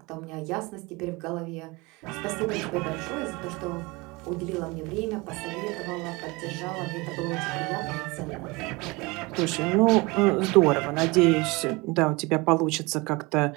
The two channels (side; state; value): left; quieter; 24.7 dB